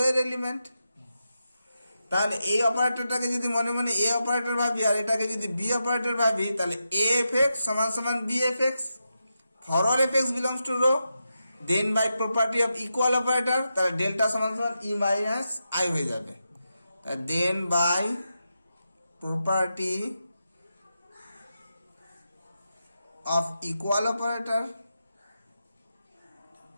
এর এলিমেন্ট। তাহলে এই অপারেটরটাকে যদি মনে মনে এ অপারেটর ভাবি, আর এটাকে যদি বি অপারেটর ভাবি, তাহলে এ এফ এক্স সমান সমান B f x. For all f x belongs to rho, then by property of equal operator, তাহলে ডেল্টা সমান সমান ই মাইনাস আই হয়ে যাবে। Then by property of equal operator,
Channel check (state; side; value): inverted; both; correlation -0.88